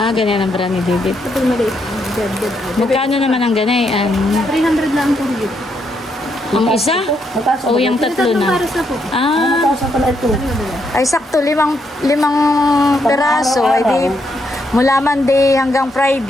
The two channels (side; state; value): both; normal; correlation 0.77